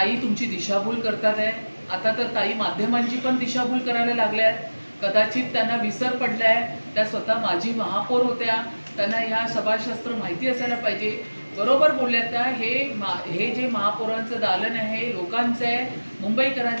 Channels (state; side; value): inverted; both; correlation -1.00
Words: तुमची दिशाभूल करतात आहे। आता तर ताई माध्यमांची पण दिशाभूल करायला लागल्या आहेत. कदाचित त्यांना विसर पडलाय, त्या स्वतः माजी महापौर होत्या, त्यांना ह्या सभाशास्त्र माहिती असायला पाहिजे. बरोबर बोलल्या त्या, हे जे महापौरांचं दालन आहे लोकांचं आहे,